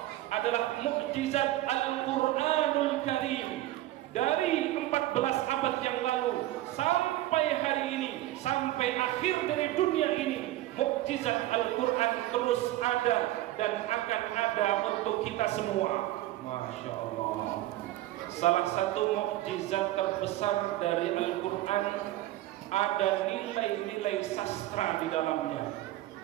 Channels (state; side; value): quieter; left; 15.6 dB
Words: adalah mukjizat Al-Quranul Karim. Dari 14 abad yang lalu sampai hari ini, sampai akhir dari dunia ini, mukjizat Al-Quran terus ada dan akan ada untuk kita semua. Masya Allah. Salah satu mukjizat terbesar dari Al-Quran, ada nilai-nilai sastra di dalamnya,